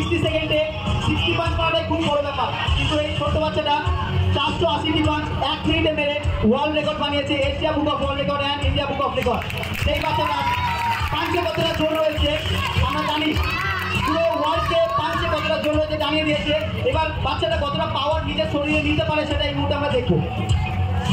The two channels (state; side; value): identical; both; correlation 1.00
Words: সেকেন্ডে 60 পাস করাটাই খুব বড় ব্যাপার, কিন্তু এই ছোট্ট বাচ্চাটা 480টি পাস 1 মিনিটে মেরে ওয়ার্ল্ড রেকর্ড বানিয়েছে, Asia book of world record and India book of record. সেই বাচ্চাটা পাঞ্চে কতটা জোর রয়েছে আমরা জানি, পুরো ওয়ার্ল্ডকে পাঞ্চে কতটা জোর রয়েছে জানিয়ে দিয়েছে। এবার বাচ্চাটা কতটা পাওয়ার নিজের শরীরে নিতে পারে সেটা এই মুহূর্তে আমরা দেখবো।